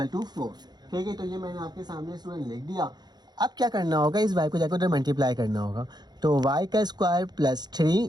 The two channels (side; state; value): left; late; 0.20 ms